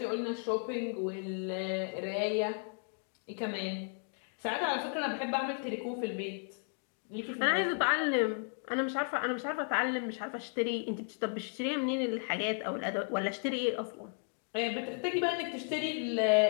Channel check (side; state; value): right; silent; 55 dB below the other